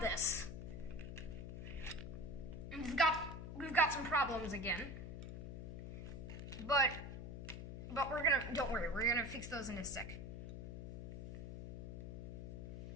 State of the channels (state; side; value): noise; left; hum, 7 dB below the sound